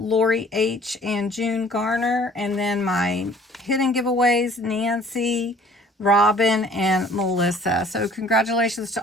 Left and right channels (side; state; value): both; normal; correlation 0.53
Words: H. and June Garner, and then my hidden giveaways, Nancy, Robin, and Melissa. So congratulations